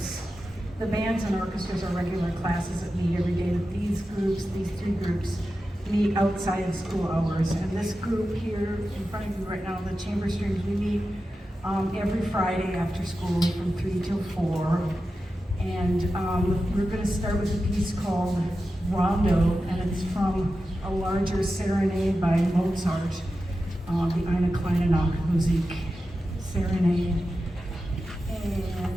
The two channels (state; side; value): normal; both; correlation 0.92